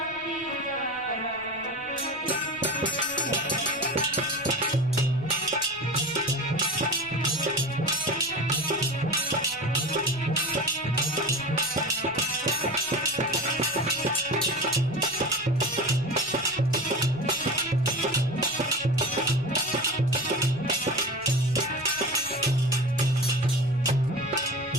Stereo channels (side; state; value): left; noise; rumble, 25 dB below the sound